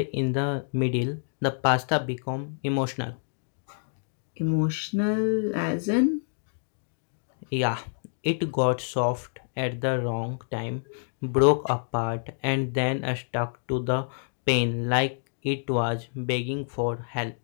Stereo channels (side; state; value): right; silent; digital silence